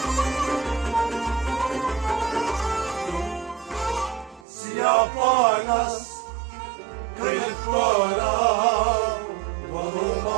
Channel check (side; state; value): left; drops out; at 4.5 s